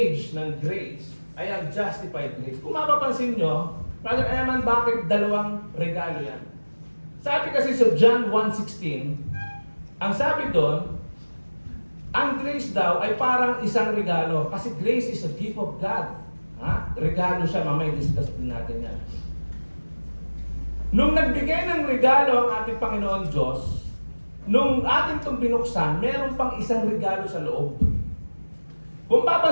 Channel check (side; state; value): both; inverted; correlation -1.00